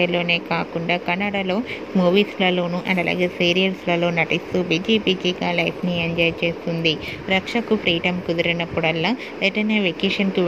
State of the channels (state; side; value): identical; both; correlation 1.00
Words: కాకుండా కన్నడలో మూవీస్లలోనూ అండ్ అలాగే సీరియల్స్లలో నటిస్తూ బిజీగా లైఫ్ని ఎంజాయ్ చేస్తుంది. రక్షకు ఫ్రీడమ్ కుదిరినప్పుడల్లా ఎటైనా వెకేషన్కి